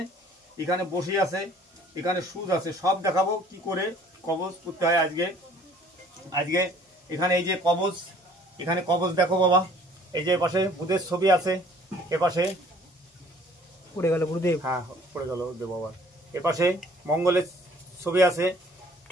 এখানে বসি আছে, এখানে সুদ আছে, সব দেখাবো কি করে কবজ করতে হয় আজকে। এখানে এই যে কবজ, এখানে কবজ দেখো বাবা, এই যে পাশে বুধের ছবি আছে, এপাশে পড়ে গেল গুরুদেব, হ্যাঁ পড়ে গেল দেব বাবা। এপাশে মঙ্গলের ছবি আছে,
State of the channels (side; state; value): both; normal; correlation 0.55